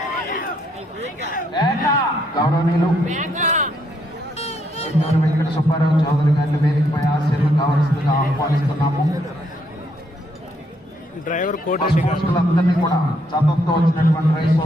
గౌరవనీయులు వెంకట సుబ్బారావు చౌదరి గారిని వేదికపై ఆశీర్వాదం కావాల్సిందిగా ఆహ్వానిస్తున్నాము. డ్రైవర్ కోటిరెడ్డి అందరినీ కూడా చదువుతో వచ్చినటువంటి రైతు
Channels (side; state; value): both; normal; correlation 0.73